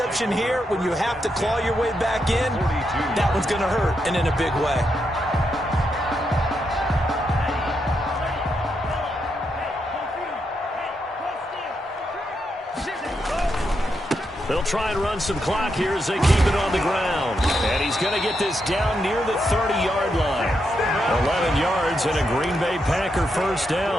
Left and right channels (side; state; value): both; normal; correlation 0.82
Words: here when you have to claw your way back in, that one's going to hurt, and in a big way. They'll try and run some clock here as they keep it on the ground. And he's going to get this down near the 30-yard line. 11 yards and a Green Bay Packer first